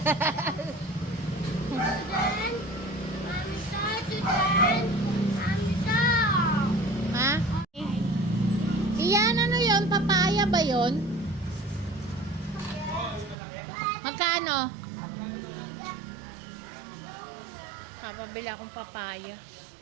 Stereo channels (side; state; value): left; drops out; at 13.4 s